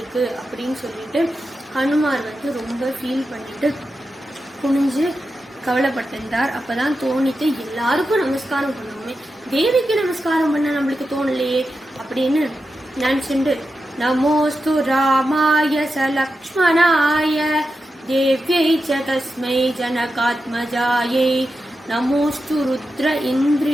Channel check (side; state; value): both; normal; correlation 0.90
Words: அப்படின்னு சொல்லிட்டு ஹனுமார் வந்து ரொம்ப ஃபீல் பண்ணிட்டு குனிஞ்சு கவலைப்பட்டிருந்தார். அப்பதான் தோணிட்டு எல்லாருக்கும் நமஸ்காரம் பண்ணுவோமே, தேவிக்கு நமஸ்காரம் பண்ண நம்மளுக்கு தோணலையே அப்படின்னு நினைச்சுண்டு, நமோஸ்து ராமாய சலக்ஷ்மணாய தேவ்யை ச தஸ்மை ஜனகாத்மஜாயை நமோஸ்து ருத்ர